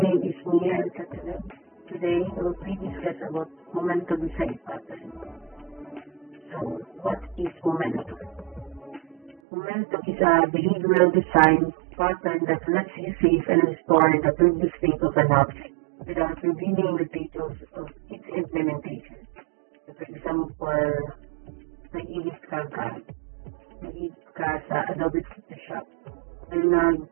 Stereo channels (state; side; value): drops out; left; at 9.4 s